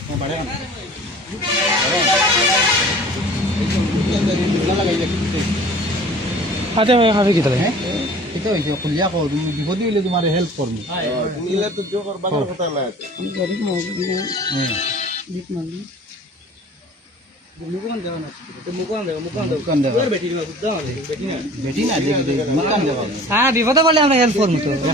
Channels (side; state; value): both; normal; correlation 0.46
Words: হাতে খাবে কি তাহলে এটা হইছে খুলিয়া কও তুমি বিপদে হইলে তোমারে হেল্প করব নিলে তো জো করবার কথা না আমি গরিব মানুষ দিক মানি মুকুন দেওয়া না তো মুকুন দেওয়া বেটি না মুকুন দেওয়া হ্যাঁ বিপদে বলে আমরা হেল্প করব তো